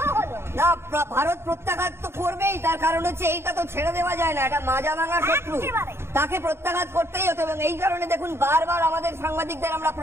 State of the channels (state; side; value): late; left; 0.12 ms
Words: হলো। না, ভারত প্রত্যাঘাত তো করবেই, তার কারণ হচ্ছে এইটা তো ছেড়ে দেওয়া যায় না, এটা মাজা ভাঙা শত্রু, তাকে প্রত্যাঘাত করতেই হতো। এবং এই কারণে দেখুন, বারবার আমাদের সাংবাদিকদের আমরা